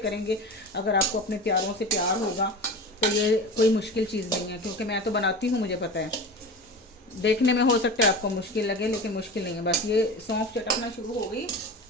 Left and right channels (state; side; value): normal; both; correlation 0.31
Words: अगर आपको अपने प्यारों से प्यार होगा तो ये कोई मुश्किल चीज़ नहीं है। क्योंकि मैं तो बनाती हूँ, मुझे पता है। देखने में हो सकता है आपको मुश्किल लगे, लेकिन मुश्किल नहीं है। बस ये सौंफ चटकना शुरू हो गई,